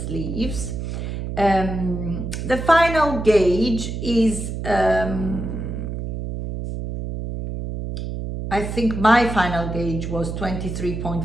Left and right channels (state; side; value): noise; right; hum, 5 dB below the sound